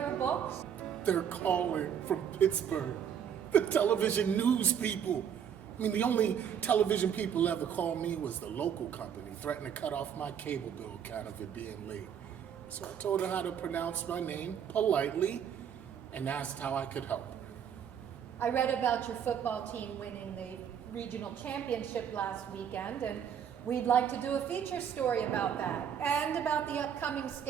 Books? They're calling from Pittsburgh. The television news people. I mean, the only television people ever called me was the local company, threatened to cut off my cable bill account of it being late. So I told her how to pronounce my name politely and asked how I could help her. I read about your football team winning the regional championship last weekend, and we'd like to do a feature story about that and about the upcoming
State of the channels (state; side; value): quieter; left; 8.4 dB